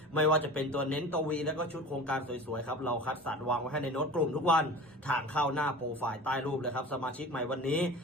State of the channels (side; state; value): both; normal; correlation 0.36